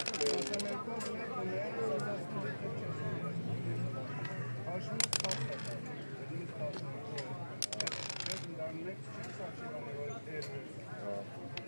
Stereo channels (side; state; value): both; inverted; correlation -1.00